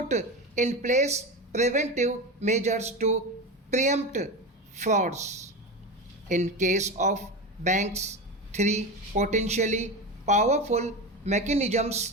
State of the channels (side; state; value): both; normal; correlation 0.22